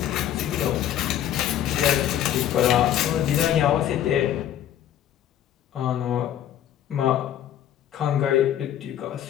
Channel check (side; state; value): right; quieter; 11.1 dB